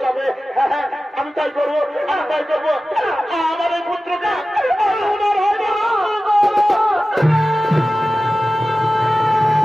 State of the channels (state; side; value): normal; both; correlation 0.95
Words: যাবে। আমি তাই করবো, আমি তাই করবো। আমার এই পুত্রকে ওনার হাতে